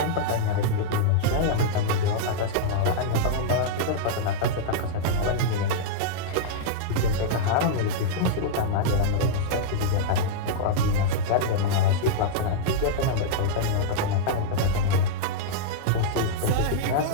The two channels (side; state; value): both; different; correlation -0.02